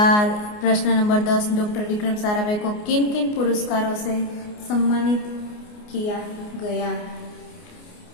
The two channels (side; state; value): right; late; 29 ms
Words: प्रश्न नंबर 10, डॉक्टर विक्रम साराभाई को किन किन पुरस्कारों से सम्मानित किया गया?